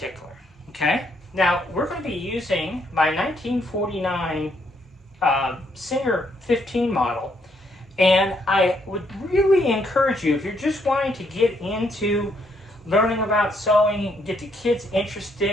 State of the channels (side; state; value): both; normal; correlation 0.72